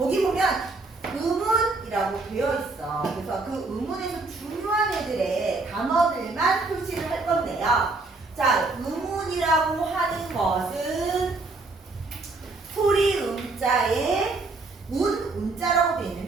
보면 의문이라고 되어 있어. 그래서 그 의문에서 중요한 애들의 단어들만 표시를 할 건데요. 자, 의문이라고 하는 것은 소리 음자에 운자라고 되어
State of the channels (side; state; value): left; quieter; 3.5 dB